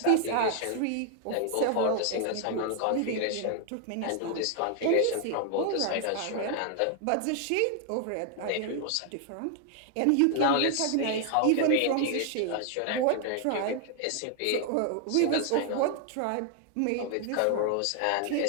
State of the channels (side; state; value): both; different; correlation 0.00